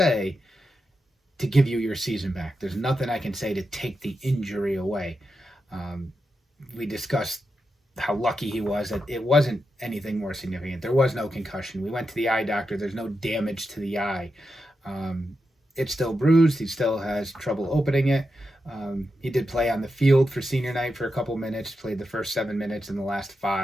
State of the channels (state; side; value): normal; both; correlation 0.88